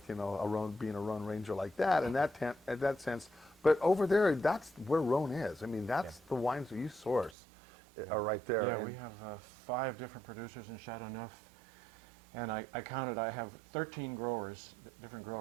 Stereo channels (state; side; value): drops out; left; at 7.4 s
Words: you know, being a Rhone Ranger like that in that sense, but over there, that's where Rhone is. I mean, that's the wines that you source are right there. Yeah, we have 5 different producers in Châteauneuf, and I counted. I have 13 different